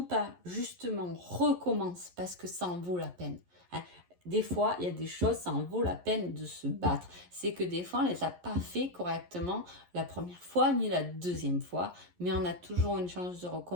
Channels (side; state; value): left; late; 11 ms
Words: pas, justement recommence parce que ça en vaut la peine. Hein. Des fois, il y a des choses, ça en vaut la peine de se battre. C'est que des fois, on ne les a pas fait correctement la première fois ni la deuxième fois, mais on a toujours une chance de